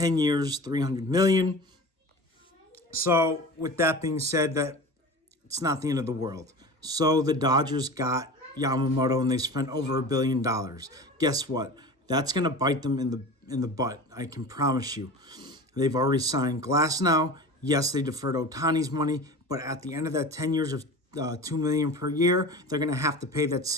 years, $300 million. So with that being said, that it's not the end of the world. So the Dodgers got Yamamoto and they spent over $1 billion. Guess what? That's going to bite them in the butt. I can promise you. They've already signed Glasnow. Yes, they deferred Ohtani's money, but at the end of that 10 years of $2 million per year, they're going to have to pay that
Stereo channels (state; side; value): normal; both; correlation 0.34